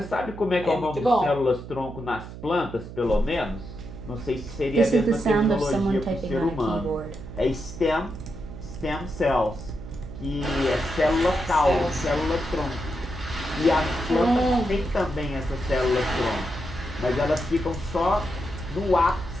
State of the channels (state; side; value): noise; right; hum, 12 dB below the sound